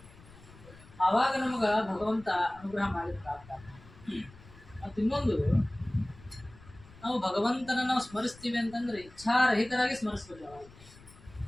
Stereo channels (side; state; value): left; noise; rumble, 22 dB below the sound